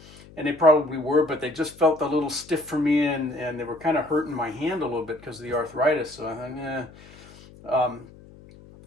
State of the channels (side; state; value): left; noise; hum, 21 dB below the sound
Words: and they probably were, but they just felt a little stiff for me, and they were kind of hurting my hand a little bit because of the arthritis. So I thought,